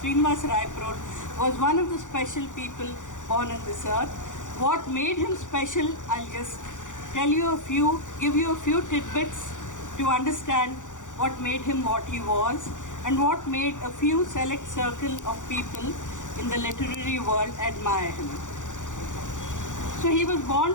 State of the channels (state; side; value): late; right; 0.86 ms